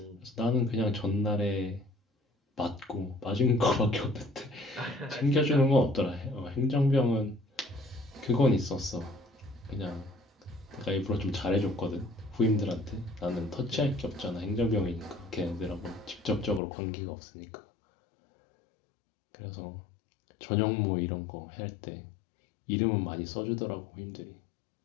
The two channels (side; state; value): right; drops out; at 16.6 s